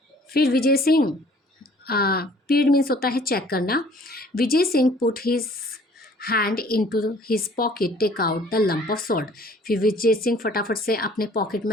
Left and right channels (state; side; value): normal; both; correlation 0.55